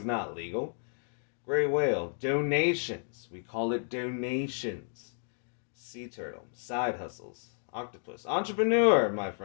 not legal. Gray Whale, donations. We call it donations. Sea Turtle, side hustles. Octopus, entrepreneur, my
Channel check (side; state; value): right; silent; digital silence